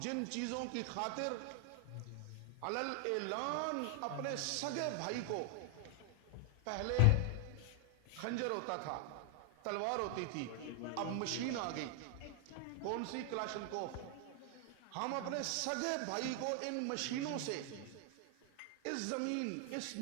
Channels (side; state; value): both; different; correlation 0.00